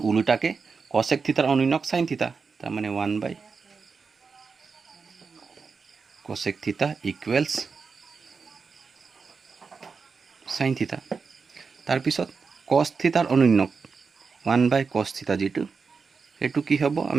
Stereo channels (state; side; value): quieter; left; 5.1 dB